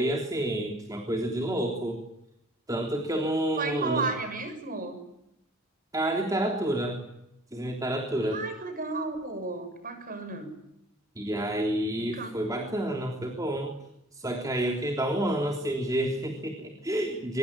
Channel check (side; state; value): both; normal; correlation 0.53